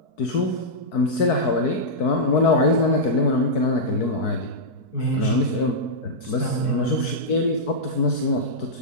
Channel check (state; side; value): late; right; 4.6 ms